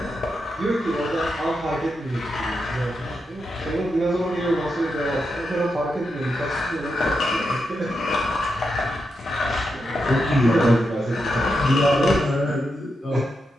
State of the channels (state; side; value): normal; both; correlation 0.86